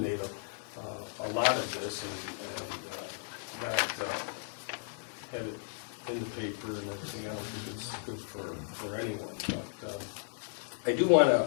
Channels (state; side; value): silent; right; 55 dB below the other